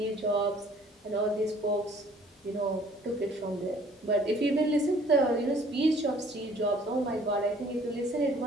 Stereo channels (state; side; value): normal; both; correlation 0.56